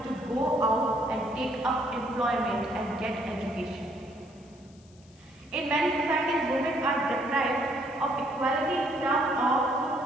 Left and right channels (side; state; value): left; noise; hiss, 29 dB below the sound